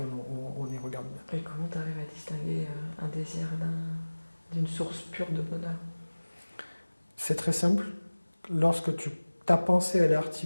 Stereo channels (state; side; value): inverted; both; correlation -1.00